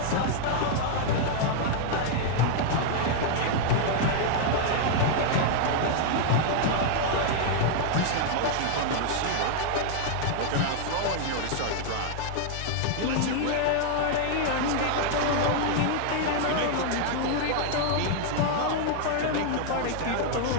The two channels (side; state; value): both; different; correlation 0.00